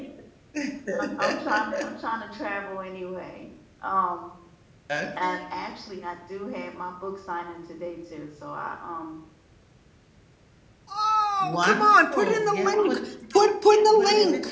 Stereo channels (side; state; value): both; identical; correlation 1.00